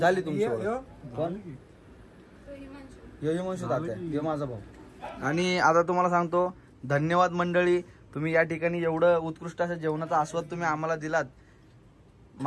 तुमची ओळख. कोण? यो हिमांशू तात्या. यो माझा भाऊ. आणि आता तुम्हाला सांगतो धन्यवाद मंडळी. तुम्ही या ठिकाणी एवढं उत्कृष्ट असं जेवणाचा आस्वाद तुम्ही आम्हाला दिलात.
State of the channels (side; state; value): both; identical; correlation 1.00